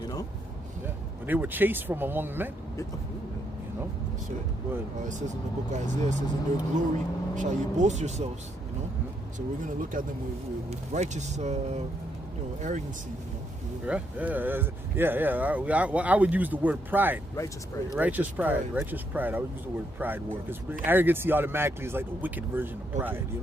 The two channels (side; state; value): both; normal; correlation 0.76